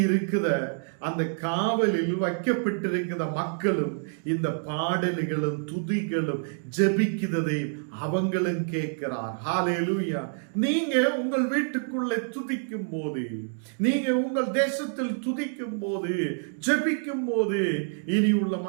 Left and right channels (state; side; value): silent; left; 60 dB below the other